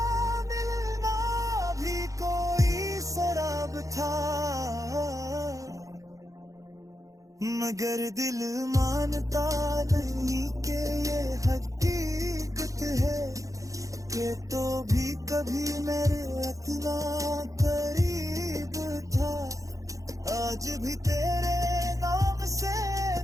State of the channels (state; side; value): late; left; 0.16 ms